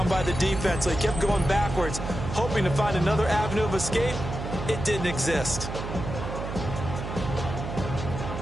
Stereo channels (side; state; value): right; noise; hum, 6 dB below the sound